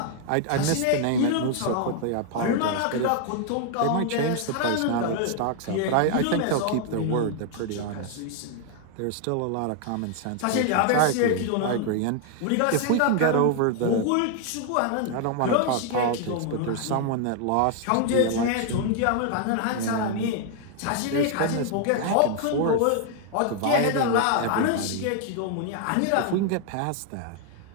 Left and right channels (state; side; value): different; both; correlation 0.00